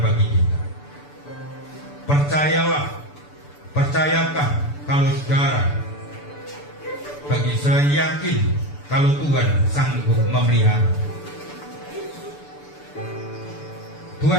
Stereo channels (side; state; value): right; late; 6.9 ms